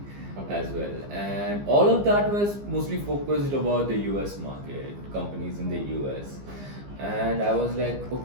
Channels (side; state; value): left; late; 15 ms